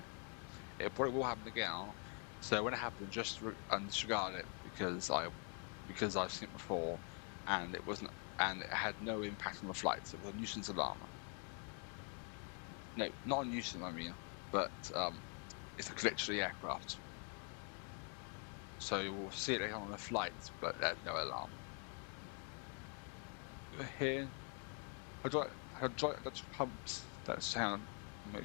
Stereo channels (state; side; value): quieter; right; 39.5 dB